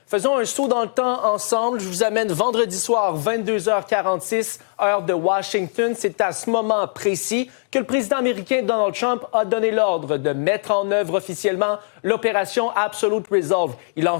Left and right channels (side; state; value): right; silent; digital silence